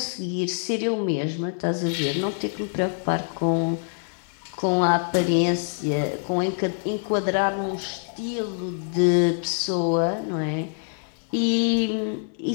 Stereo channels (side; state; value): right; silent; 62 dB below the other